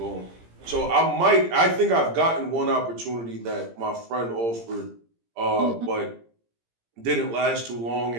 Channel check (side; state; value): left; late; 17 ms